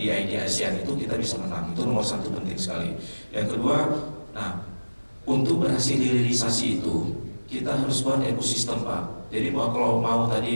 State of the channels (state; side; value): inverted; both; correlation -1.00